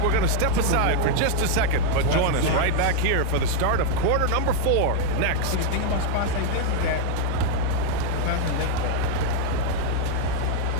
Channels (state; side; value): different; both; correlation 0.00